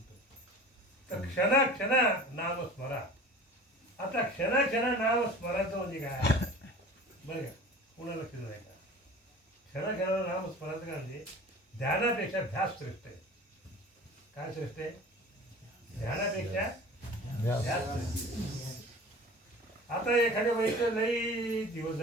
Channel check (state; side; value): normal; both; correlation 0.41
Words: तर क्षणा क्षणा नाम स्मरा. आता क्षणा क्षणा नाम स्मरायचं म्हणजे काय बरं का, पुन्हा लक्ष नाही का. क्षणा क्षणा नाम स्मरायचं काय म्हणजे ध्यानापेक्षा ध्यास श्रेष्ठ आहे. काय श्रेष्ठ आहे? ध्यानापेक्षा ध्यास श्रेष्ठ. आता एखाद्या बाईचं लई दिवस